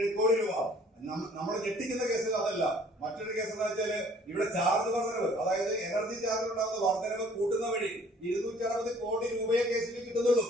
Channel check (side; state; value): both; normal; correlation 0.56